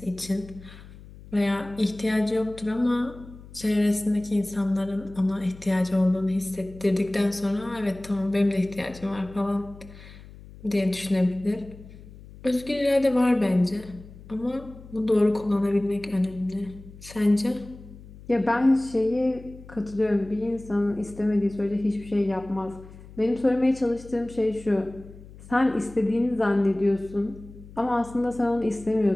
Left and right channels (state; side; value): noise; left; hum, 18 dB below the sound